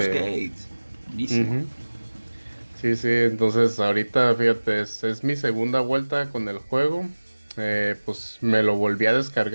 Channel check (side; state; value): both; inverted; correlation -1.00